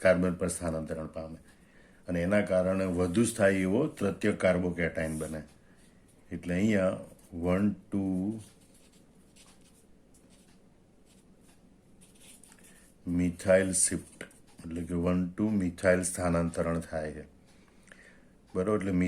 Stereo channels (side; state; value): both; identical; correlation 1.00